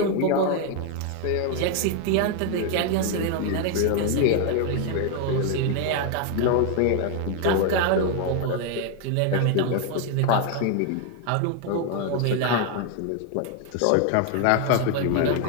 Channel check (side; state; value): both; different; correlation 0.00